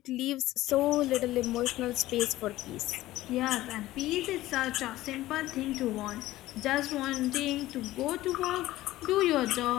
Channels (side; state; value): right; quieter; 16.2 dB